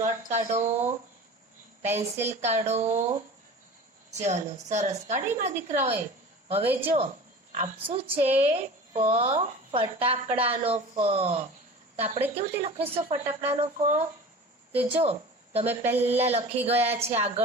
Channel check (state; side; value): normal; both; correlation 0.37